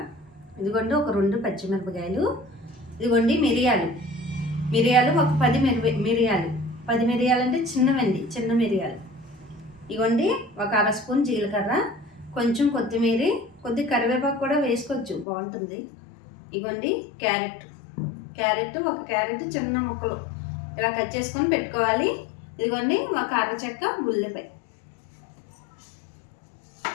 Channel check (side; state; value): right; drops out; at 15.2 s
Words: ఇదిగోండి ఒక 2 పచ్చిమిరపకాయలు, ఇదిగోండి మిరియాలు ఒక 10 మిరియాలు. 10 మిరియాలు అంటే చిన్న మిరియాలు. ఇదిగోండి ఒక 1/2 స్పూన్ జీలకర్ర, కొంచెం కొత్తిమీర, కొద్ది కరివేపాకు కూడా వేసుకోవచ్చు, బాగుంటుంది. ఇదిగోండి క్యారెట్ ఒక క్యారెట్ చిన్న ముక్కలు ఇలా కట్ చేసుకొని పెట్టుకోవాలి. ఇదిగోండి ఒక అరచెక్క ఉల్లిపాయ.